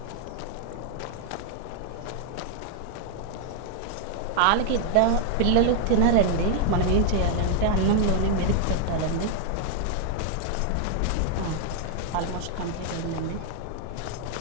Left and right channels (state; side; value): different; both; correlation 0.00